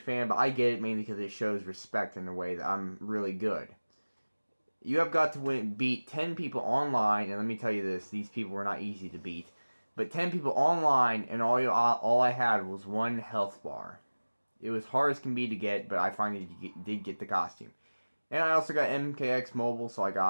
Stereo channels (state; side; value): inverted; both; correlation -1.00